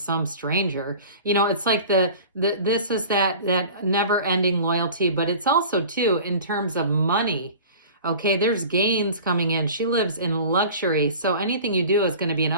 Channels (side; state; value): both; inverted; correlation -0.41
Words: stranger. It's like this is that never-ending loyalty, but it's also too in terms of money. Okay, there's gains coming in. She lives in luxury, so anything you do is going to be an